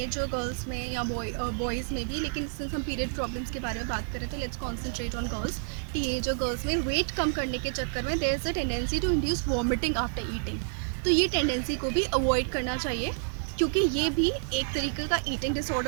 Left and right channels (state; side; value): silent; left; digital silence